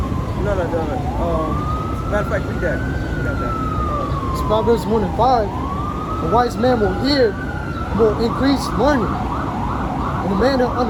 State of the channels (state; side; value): identical; both; correlation 1.00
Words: No. Matter of fact, read that. We got that. It's Proverbs 1 and 5. A wise man will increase learning, and a man of